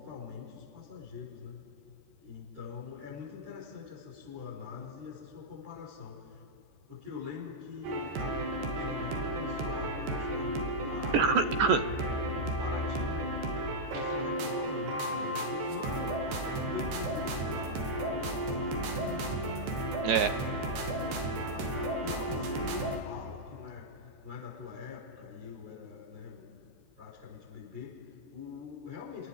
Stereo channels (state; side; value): late; left; 14 ms